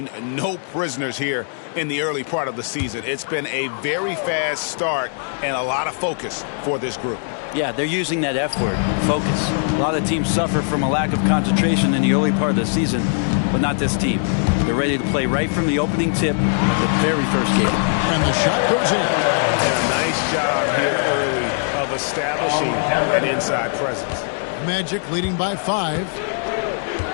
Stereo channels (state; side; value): silent; right; 65 dB below the other